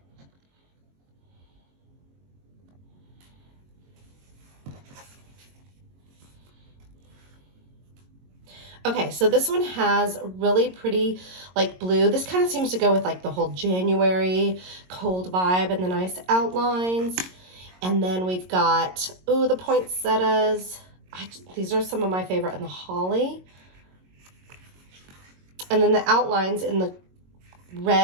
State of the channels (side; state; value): left; late; 22 ms